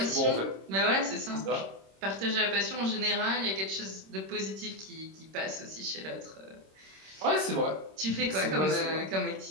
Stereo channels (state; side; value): late; left; 26 ms